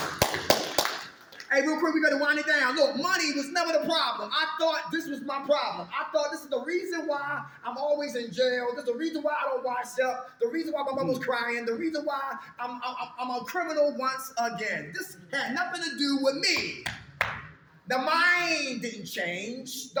Hey, real quick, we got to wind it down. Look, money was never the problem. I thought this was my problem. I thought this is the reason why I'm always in jail. This is the reason why I don't wash up. The reason why my mom was crying. The reason why I'm a criminal once again. This had nothing to do with me. The mind didn't change. The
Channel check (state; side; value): identical; both; correlation 1.00